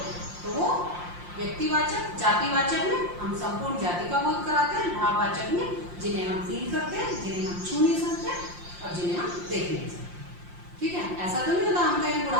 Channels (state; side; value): late; left; 5.7 ms